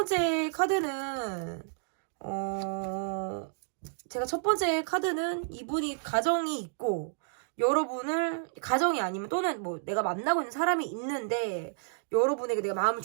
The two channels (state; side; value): silent; left; digital silence